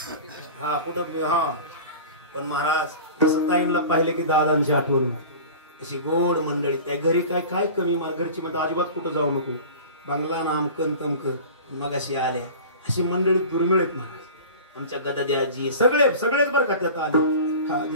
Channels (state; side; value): inverted; both; correlation -0.37